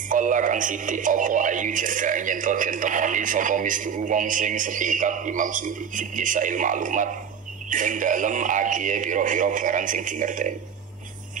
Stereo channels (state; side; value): quieter; left; 7.5 dB